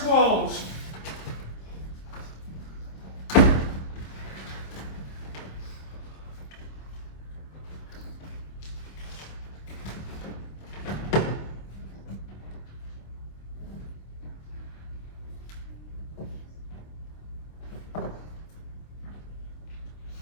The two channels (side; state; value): right; late; 26 ms